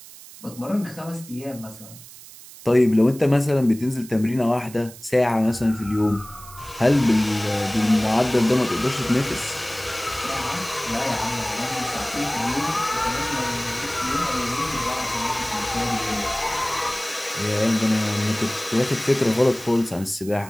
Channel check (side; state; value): right; noise; hiss, 18 dB below the sound